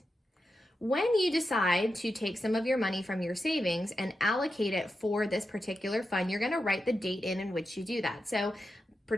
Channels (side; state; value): both; normal; correlation 0.89